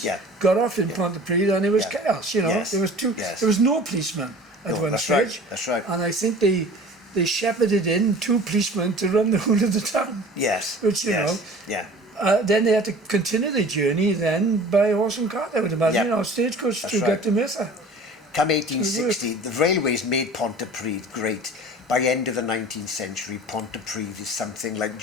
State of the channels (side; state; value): both; normal; correlation 0.43